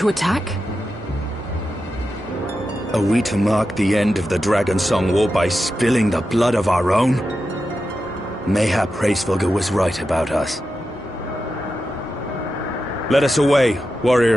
attack. Are we to mark the end of the Dragonsong War by spilling the blood of our own? Mayhap Hraesvelgr was right about us. Let us away,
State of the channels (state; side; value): normal; both; correlation 0.90